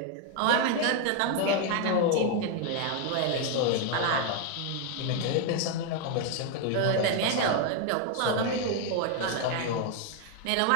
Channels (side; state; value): both; different; correlation 0.00